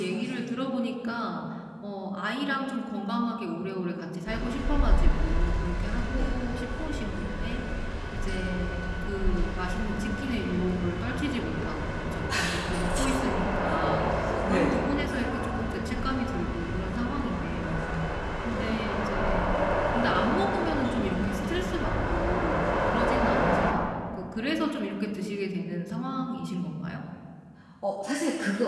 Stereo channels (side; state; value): both; identical; correlation 1.00